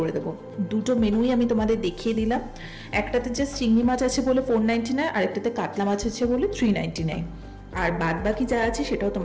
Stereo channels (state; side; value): identical; both; correlation 1.00